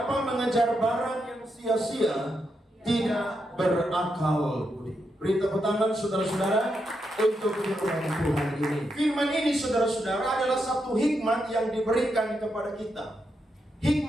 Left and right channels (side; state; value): both; normal; correlation 0.83